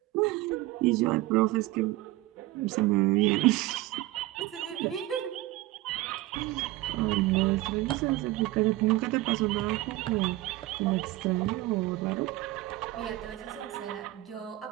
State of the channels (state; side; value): quieter; left; 17.9 dB